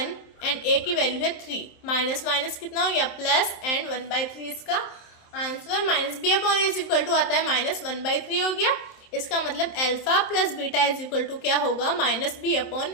एंड a की वैल्यू है 3। माइनस माइनस कितना हो गया प्लस, एंड 1/3 इसका answer. -b upon a is equal to आता है -1/3 हो गया। इसका मतलब alpha plus beta is equal to क्या होगा -b अपॉन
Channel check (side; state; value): right; late; 27 ms